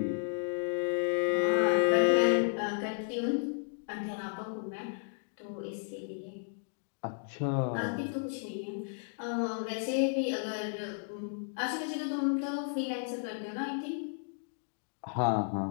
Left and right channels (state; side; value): silent; right; digital silence